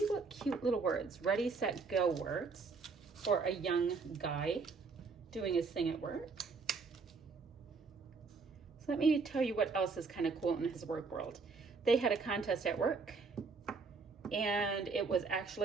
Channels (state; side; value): quieter; left; 4.6 dB